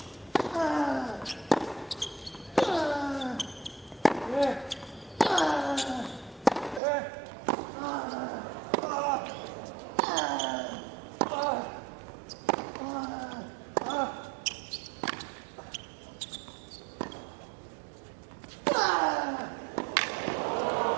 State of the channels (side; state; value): left; drops out; at 6.8 s